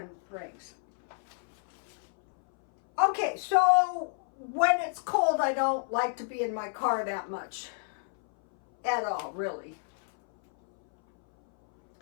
brings. Okay, so when it's cold, I don't like to be in my car that much. At all, really.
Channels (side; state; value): right; silent; 58 dB below the other